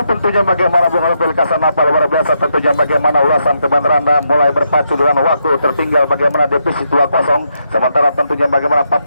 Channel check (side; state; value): both; inverted; correlation -0.80